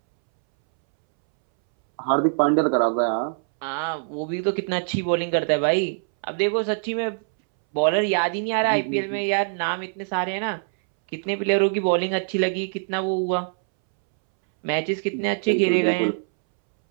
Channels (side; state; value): left; silent; 63 dB below the other